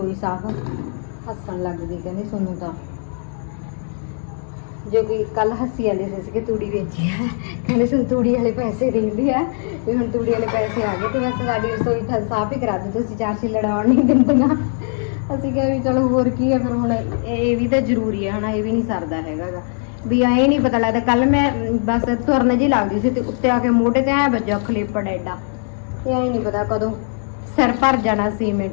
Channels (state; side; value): silent; right; 59 dB below the other